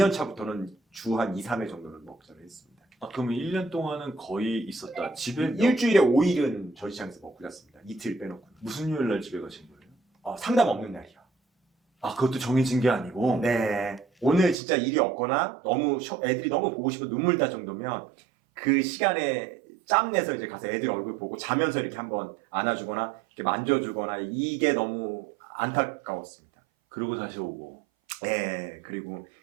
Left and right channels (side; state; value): left; drops out; at 14.6 s